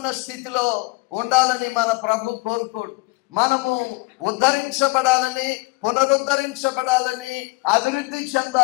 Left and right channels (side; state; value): right; quieter; 25.1 dB